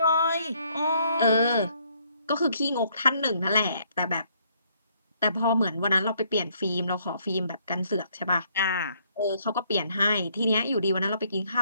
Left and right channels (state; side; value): inverted; both; correlation -0.68